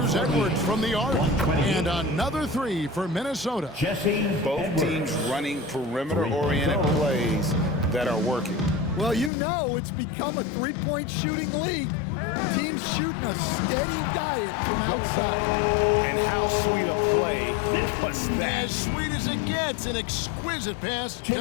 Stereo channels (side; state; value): right; drops out; at 9.3 s